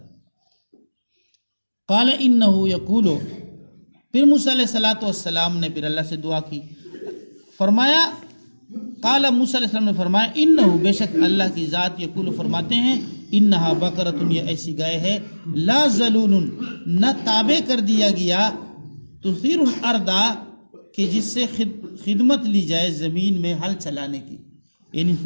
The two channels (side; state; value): both; inverted; correlation -1.00